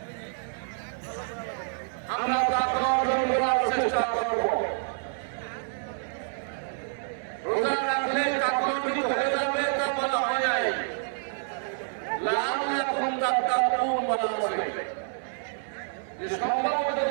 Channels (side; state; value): left; silent; 59 dB below the other